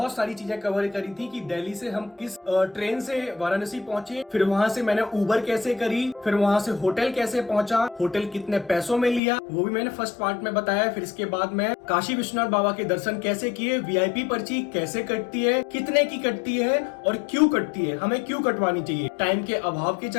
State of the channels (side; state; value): right; drops out; at 9.2 s